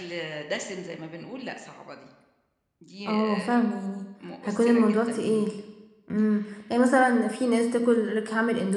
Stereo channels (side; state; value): both; identical; correlation 1.00